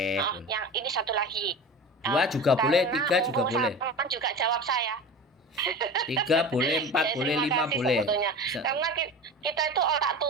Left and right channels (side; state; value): both; normal; correlation 0.32